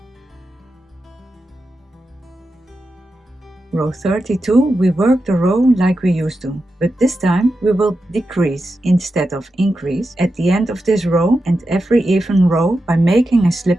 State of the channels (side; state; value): both; normal; correlation 0.89